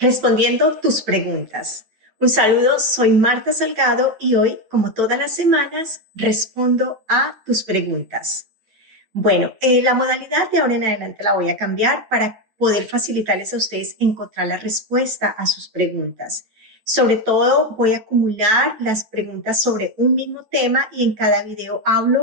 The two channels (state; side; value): late; left; 9.0 ms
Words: respondiendo tus preguntas. Un saludo, soy Marta Salgado y hoy, como todas las semanas, respondo a tus preguntas. Bueno, la modalidad de ahora en adelante la voy a cambiar para poder facilitarles a ustedes encontrar la respuesta a sus preguntas. Sobre todo, voy a acumular las preguntas sobre un mismo tema y en cada video